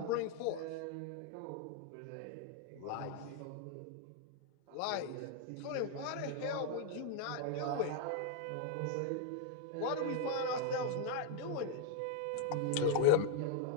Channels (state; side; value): different; both; correlation 0.00